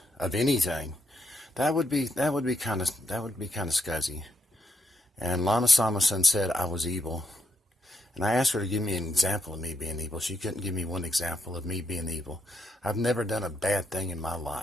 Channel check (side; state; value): both; normal; correlation 0.82